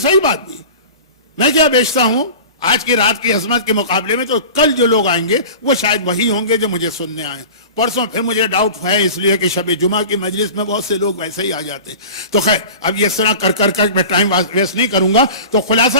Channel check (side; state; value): both; inverted; correlation -0.36